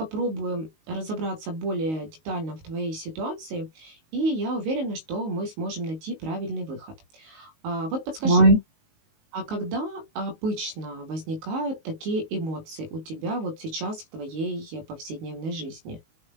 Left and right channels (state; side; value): late; left; 19 ms